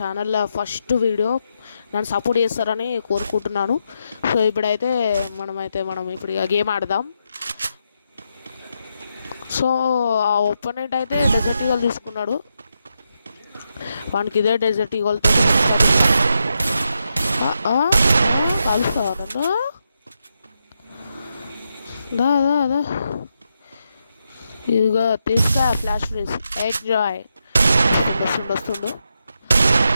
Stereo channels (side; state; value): both; inverted; correlation -0.84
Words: first video. నన్ను support చేస్తారని కోరుకుంటున్నాను. సో మనం ఇప్పుడు ఇక గేమ్ ఆడదాం. సో ఆ ఒపోనెంట్ అయితే డెజర్ట్ ఈగల్ తీసుకున్నాడు. వానికి ఇదే డెజర్ట్ ఈగల్తో కలుస్తావా? దా దా దా ఇదిగో తీసుకో ఫ్లాష్ ఫ్రీజ్ ఎంజాయ్. వస్తుండు.